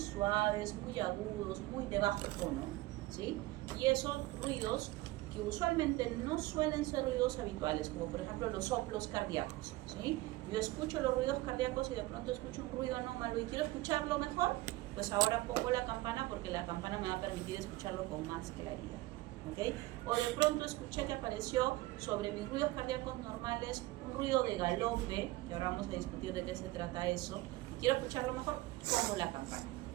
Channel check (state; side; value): quieter; left; 19.0 dB